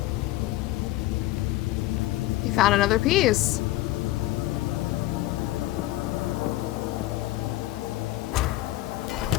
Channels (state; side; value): quieter; right; 17.0 dB